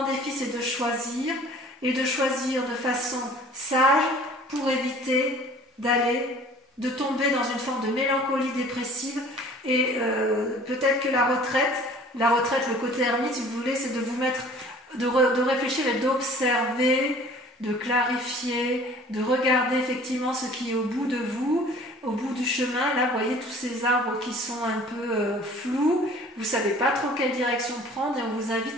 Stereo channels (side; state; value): both; normal; correlation 0.49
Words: défi c'est de choisir, et de choisir de façon sage pour éviter de tomber dans une forme de mélancolie dépressive, et peut-être que la retraite, le côté ermite si vous voulez, c'est de vous mettre, de réfléchir et d'observer, de clarifier, de regarder effectivement ce qui est au bout de vous, au bout du chemin. Là, vous voyez tous ces arbres qui sont un peu flous, vous ne savez pas trop quelle direction prendre, et on vous